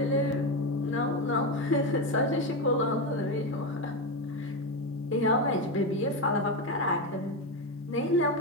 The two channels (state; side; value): normal; both; correlation 0.13